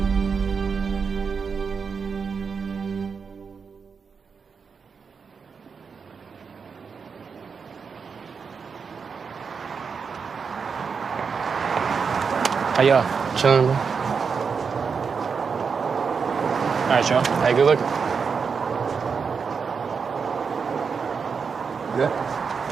How y'all? Chilling, bro. All right, y'all. Hey, good looking. Good?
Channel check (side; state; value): left; quieter; 5.7 dB